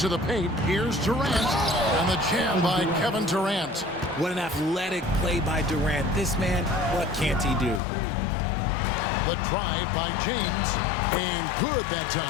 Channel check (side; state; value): right; drops out; at 7.8 s